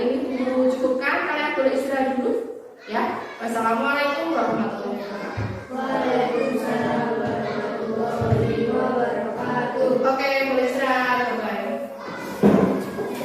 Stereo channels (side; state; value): both; identical; correlation 1.00